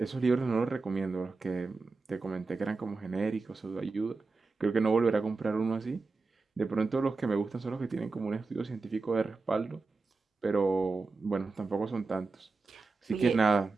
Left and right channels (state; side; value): quieter; left; 4.0 dB